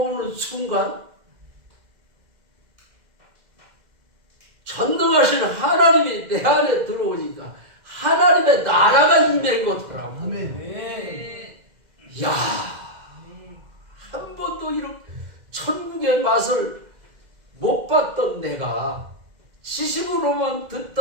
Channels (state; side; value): late; left; 2.1 ms